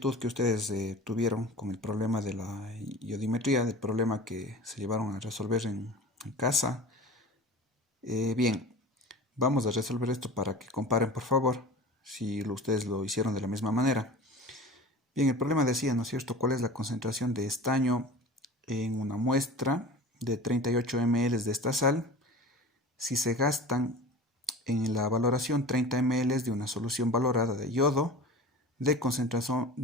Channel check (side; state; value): both; normal; correlation 0.36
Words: que ustedes tuvieron con el problema de la iodimetría, del problema que se llevaron a resolver en casa, bien, vamos a resolver esto para que comparen, por favor, si ustedes lo hicieron de la misma manera. Bien, el problema decía, ¿no es cierto?, cuál es la concentración de estaño en una muestra de 38 ml de esta sal si se gastan en la valoración 30 ml de una solución valorada de yodo de concentración